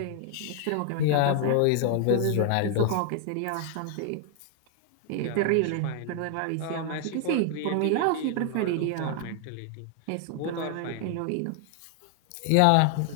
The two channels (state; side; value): different; both; correlation 0.00